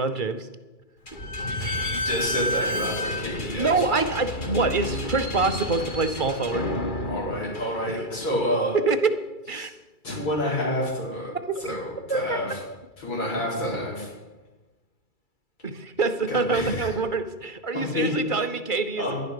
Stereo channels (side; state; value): right; late; 2.3 ms